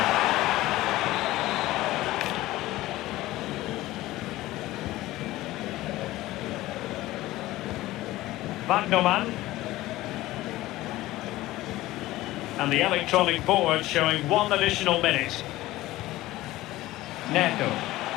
Wagnerman. And the electronic board showing one additional minute. Neto.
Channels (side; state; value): right; quieter; 17.0 dB